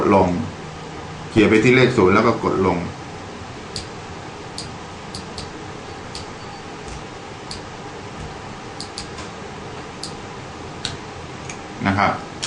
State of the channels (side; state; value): both; identical; correlation 1.00